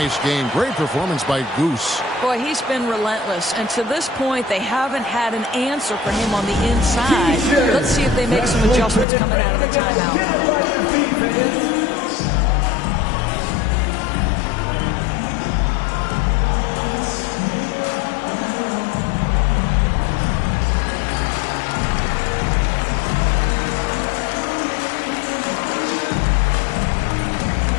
game. Great performance by Goose. Boy, he's been relentless. And to this point, they haven't had an answer for him on the inside. Let's see if they make some adjustments coming out of the timeout.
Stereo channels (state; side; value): drops out; right; at 9.1 s